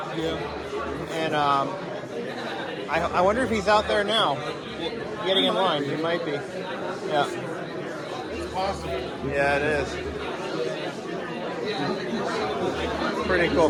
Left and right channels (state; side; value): identical; both; correlation 1.00